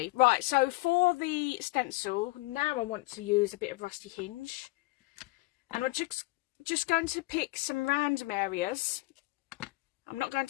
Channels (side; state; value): right; quieter; 22.3 dB